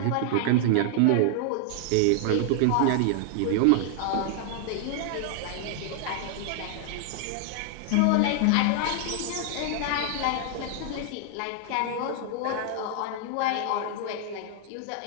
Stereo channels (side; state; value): both; different; correlation 0.00